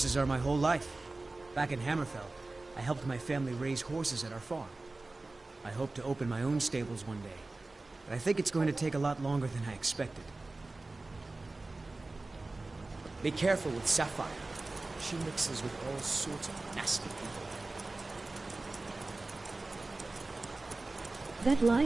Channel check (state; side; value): quieter; left; 3.2 dB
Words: are my whole life. Back in Hammerfell, I helped my family raise horses at our farm. I hope to open my own stables one day, but I think it's going to take a lot longer than I expected. Be careful with Sapphire. She mixes with all sorts of nasty people. That